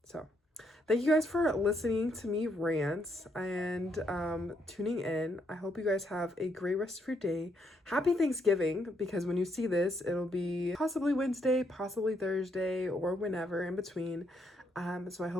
So thank you guys for listening to me rant and tuning in. I hope you guys have a great rest of your day. Happy Thanksgiving, because when you see this, it'll be possibly Wednesday, possibly Thursday, or whenever in between. So I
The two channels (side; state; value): both; normal; correlation 0.75